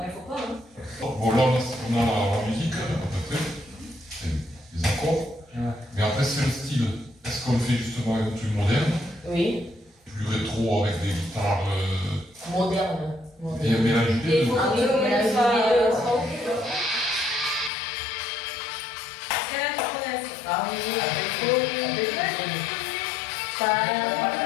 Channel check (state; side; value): drops out; right; at 17.7 s